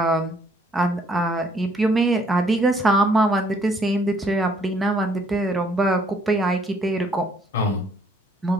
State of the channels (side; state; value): both; normal; correlation 0.65